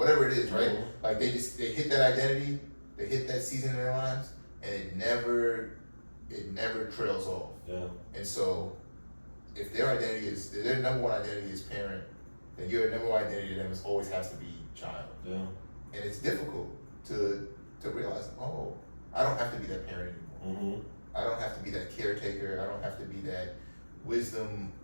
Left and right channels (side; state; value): both; inverted; correlation -1.00